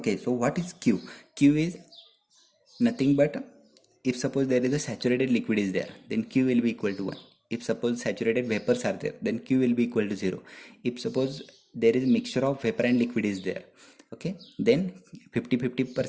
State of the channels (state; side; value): identical; both; correlation 1.00